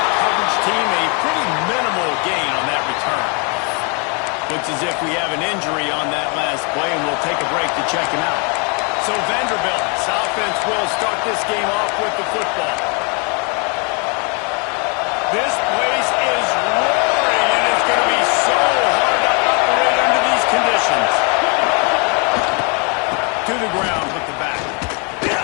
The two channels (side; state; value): right; quieter; 34.8 dB